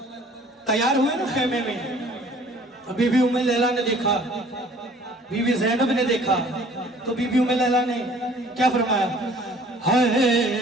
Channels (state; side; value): normal; both; correlation 0.53